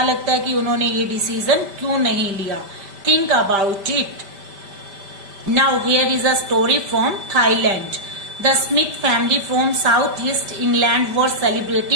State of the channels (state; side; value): late; left; 5.1 ms